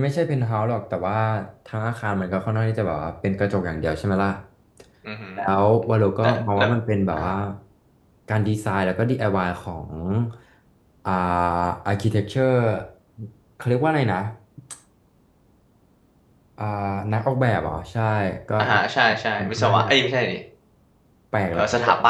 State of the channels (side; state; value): both; identical; correlation 1.00